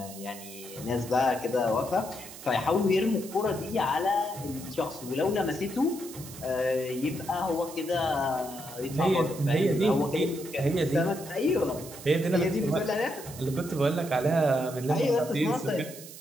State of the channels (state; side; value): noise; right; hiss, 15 dB below the sound